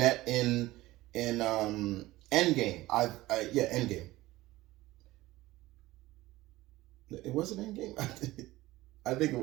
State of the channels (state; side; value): quieter; left; 18.0 dB